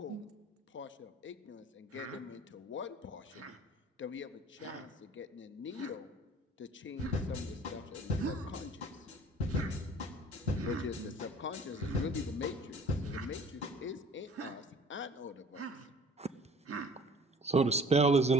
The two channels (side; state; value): both; normal; correlation 0.49